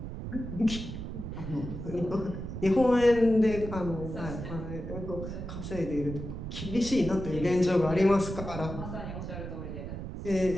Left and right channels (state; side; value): noise; right; rumble, 7 dB below the sound